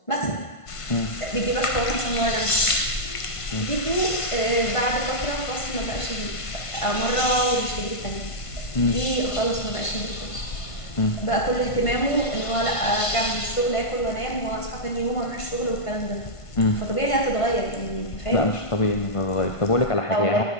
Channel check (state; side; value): late; right; 1.5 ms